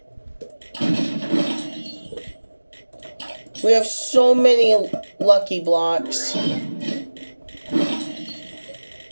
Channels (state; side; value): inverted; both; correlation -1.00